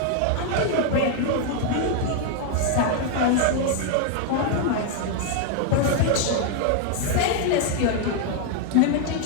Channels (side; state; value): both; different; correlation 0.00